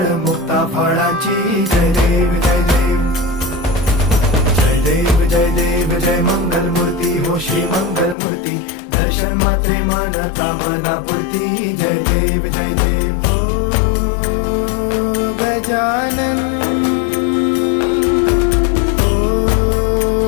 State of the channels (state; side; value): drops out; right; at 8.2 s